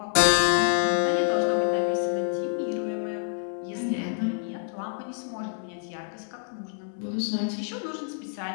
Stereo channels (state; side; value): silent; right; 60 dB below the other